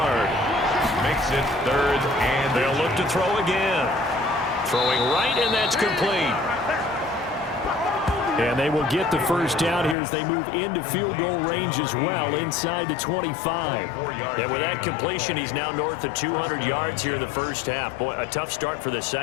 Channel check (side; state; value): right; drops out; at 10.0 s